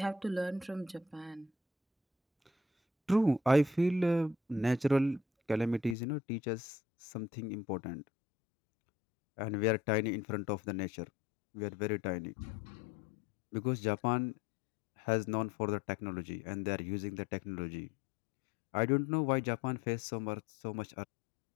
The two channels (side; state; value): right; drops out; at 6.0 s